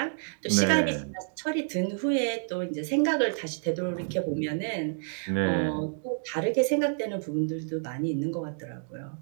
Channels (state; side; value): silent; left; digital silence